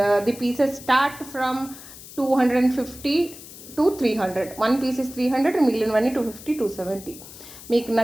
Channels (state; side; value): noise; left; hiss, 16 dB below the sound